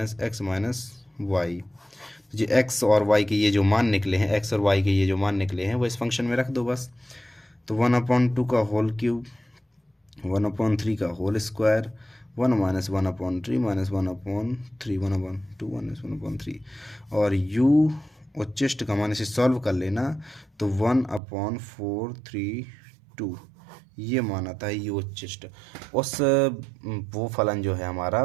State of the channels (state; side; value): drops out; left; at 21.2 s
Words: - x - y। जो x और y के ये जो मान निकले हैं, x और y के ये जो मान निकले हैं, वो इस फंक्शन में रख दो बस। तो 1/2 का होल क्यूब, 1/3 का होल स्क्वायर, 1 - 1/3 -1/3 1/2 -1/3, और u उच्चिष्ट का मान इसे सॉल्व कर लेना, तो 1/432 ये मान आता है यू उच्चिष्ट। वो फलन जो है